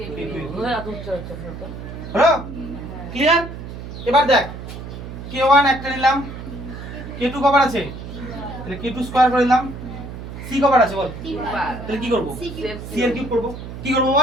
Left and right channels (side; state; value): right; noise; hum, 10 dB below the sound